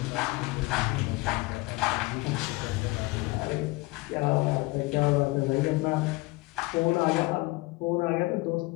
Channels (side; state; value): right; quieter; 22.7 dB